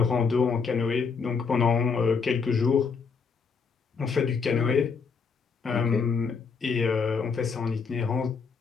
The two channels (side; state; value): right; quieter; 5.4 dB